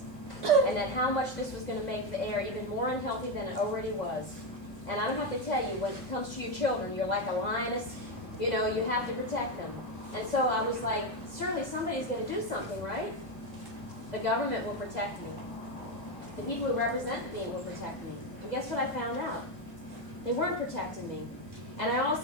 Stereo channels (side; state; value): right; late; 2.0 ms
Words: And that how much this was going to make the air even more unhealthy than it already was. And I don't have to tell you, when it comes to your children, you're like a lioness. You know, you have to protect them. And so I was like, surely somebody's going to do something, right? The government will protect me. The people who represent me will protect me. And guess what I found out? They weren't protecting me. And I